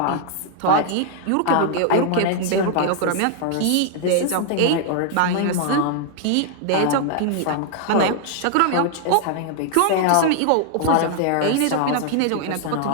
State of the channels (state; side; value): different; both; correlation 0.00